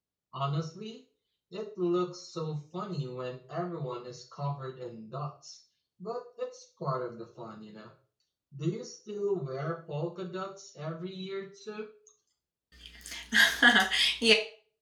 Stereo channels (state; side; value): identical; both; correlation 1.00